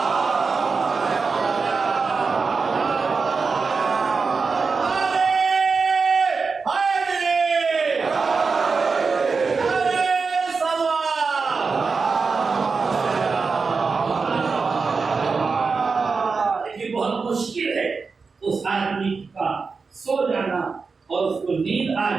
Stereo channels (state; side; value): quieter; left; 4.7 dB